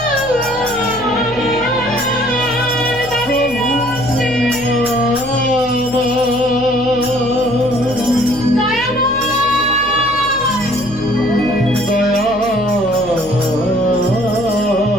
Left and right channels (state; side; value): noise; left; hum, 18 dB below the sound